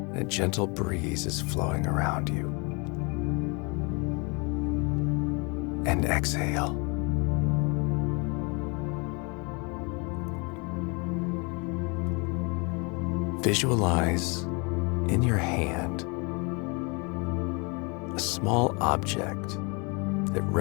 and a gentle breeze is flowing around you. And exhale. Visualize in your hand a small object that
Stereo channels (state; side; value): quieter; right; 31.1 dB